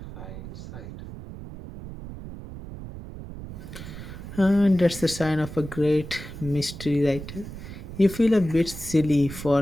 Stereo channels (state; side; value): noise; right; rumble, 11 dB below the sound